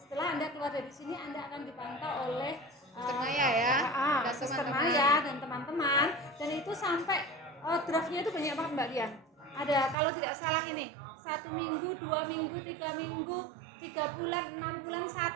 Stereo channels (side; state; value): left; drops out; at 10.0 s